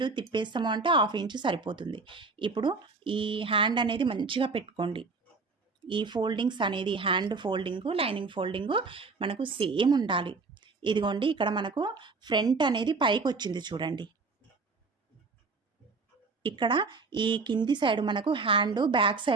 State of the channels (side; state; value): left; quieter; 4.2 dB